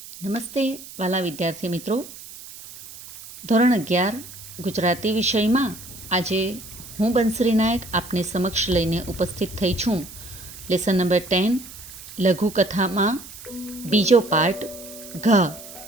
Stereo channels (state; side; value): noise; right; hiss, 15 dB below the sound